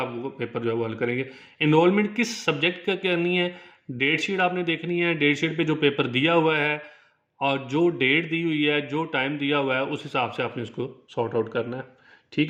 वो पेपर जो है वो हल करेंगे। एनरोलमेंट किस सब्जेक्ट का करनी है, डेट शीट आपने देखनी है, डेट शीट पे जो पेपर दिया हुआ है और जो डेट दी हुई है, जो टाइम दिया हुआ है, उस हिसाब से आपने उसको सॉर्ट आउट करना है।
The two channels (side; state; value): both; identical; correlation 1.00